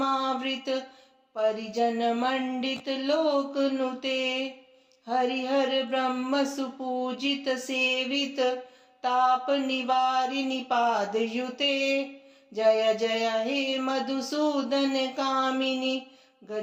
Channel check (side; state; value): both; identical; correlation 1.00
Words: परिजन मंडित लोक नुते हरिहर ब्रह्म सुपूजित सेवित ताप निवारिणि पाद युते जय जय हे मधुसूदन कामिनी